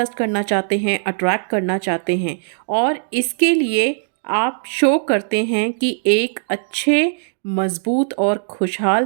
करना चाहते हैं, अट्रैक्ट करना चाहते हैं, और इसके लिए आप शो करते हैं कि एक अच्छे, मजबूत और खुशहाल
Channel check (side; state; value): left; silent; digital silence